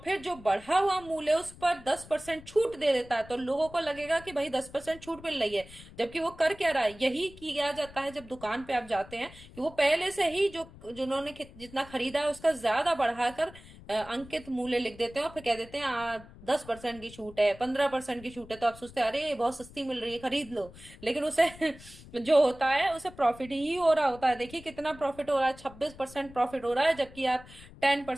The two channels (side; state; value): left; noise; rumble, 19 dB below the sound